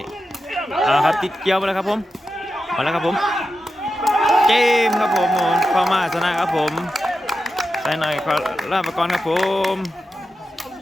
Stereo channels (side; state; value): both; normal; correlation 0.90